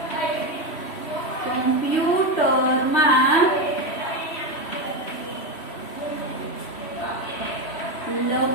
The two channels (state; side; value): late; right; 3.1 ms